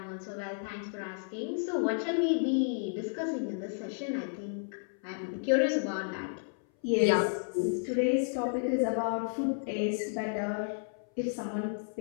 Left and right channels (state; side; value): silent; right; 56 dB below the other